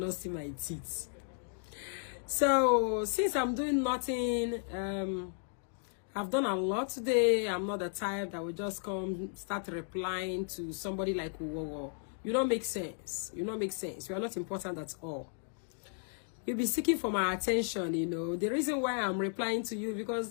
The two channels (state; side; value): silent; right; 55 dB below the other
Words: see my teeth. So since I'm doing nothing, I've done a lot today. I'm not the type that will just come start replying to somebody like whoa. You don't make sense. You don't make sense. You are not important at all. You'll be seeking for my attention, you know. The reason why I'm replying to you